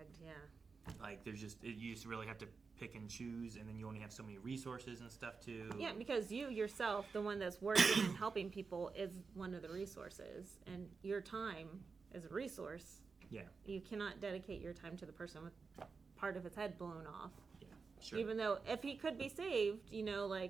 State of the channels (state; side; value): quieter; left; 4.8 dB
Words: yeah. Like, you just really have to pick and choose, and then you only have so many resources and stuff too. Yeah, because you yourself, the one that's working and helping people, is one of the resources, and your time is a resource. Yeah. You cannot dedicate your time to the person with part of his head blown off. Yeah, sure. Even though if he could be saved, you know,